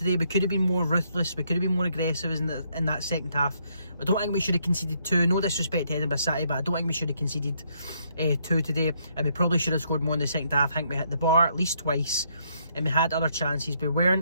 We could have been more ruthless, we could have been more aggressive in that second half. I don't think we should have conceded 2, no disrespect to Edinburgh City, but I don't think we should have conceded 2 today, and we probably should have scored more in the second half. I think we hit the bar at least twice, and we had other chances. We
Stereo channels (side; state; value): both; inverted; correlation -0.72